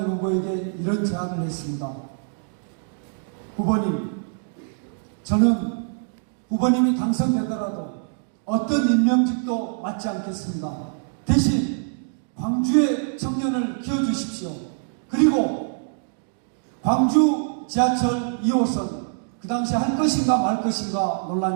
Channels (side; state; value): left; silent; digital silence